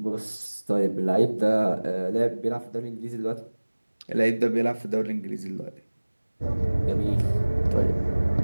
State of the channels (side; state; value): both; inverted; correlation -1.00